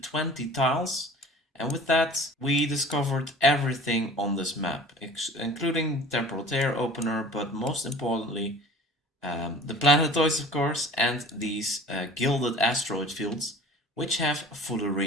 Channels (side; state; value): both; normal; correlation 0.45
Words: tiles, and with that we discovered everything on this map, including temporal tear opener, but most importantly the planetoids, of course, and these gilded asteroid fields, which have